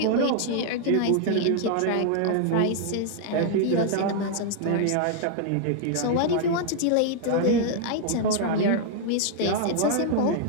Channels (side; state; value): both; different; correlation 0.00